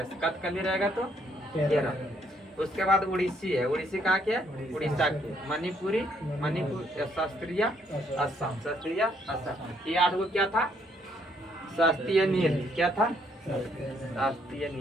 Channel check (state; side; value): normal; both; correlation 0.70